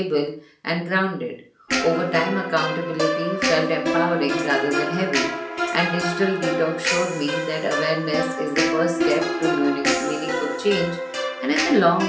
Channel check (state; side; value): identical; both; correlation 1.00